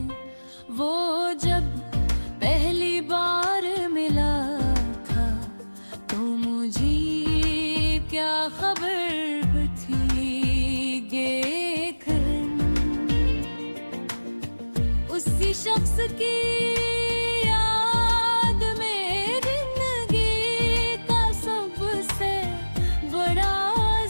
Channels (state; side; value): inverted; both; correlation -1.00